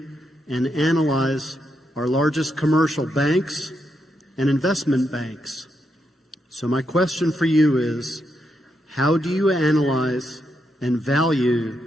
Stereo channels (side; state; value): both; normal; correlation 0.82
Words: and analyze our largest commercial banks and investment banks. So my question for you is, how do you analyze and value